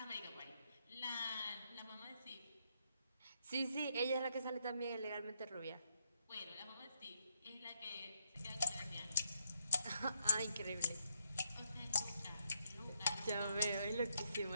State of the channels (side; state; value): both; inverted; correlation -0.78